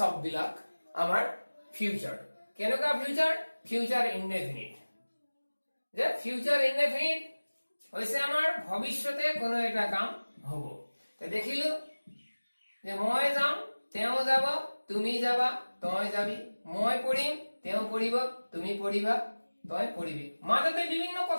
আমাৰ ফিউচাৰ। কেনেকুৱা ফিউচাৰ? Future indefinite. যে ফিউচাৰ ইনডেফিনিট হৈছে আমাৰ ভৱিষ্যতে কোনো এটা কাম হ'ব। তে দেখিলো যে মই যাম, তেওঁ যাব, তুমি যাবা, তই যাবি, মই পঢ়িম, তেওঁ পঢ়িব, তুমি পঢ়িবা, তই পঢ়িবি। মাজতে বিভিন্ন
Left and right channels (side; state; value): both; inverted; correlation -1.00